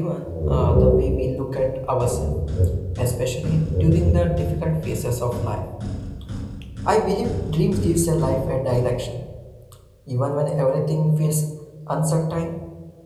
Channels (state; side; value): identical; both; correlation 1.00